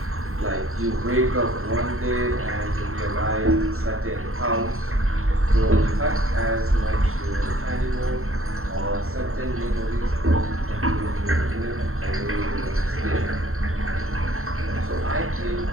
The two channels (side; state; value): left; late; 0.62 ms